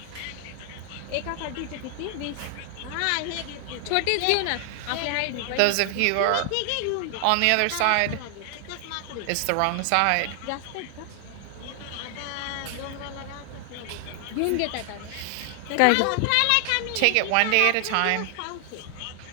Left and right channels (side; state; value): both; different; correlation 0.00